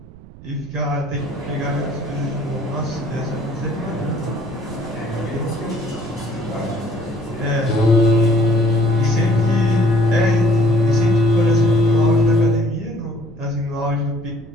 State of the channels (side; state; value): right; noise; rumble, 19 dB below the sound